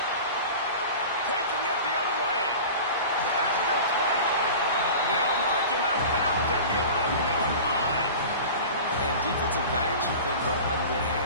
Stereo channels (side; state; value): both; inverted; correlation -0.36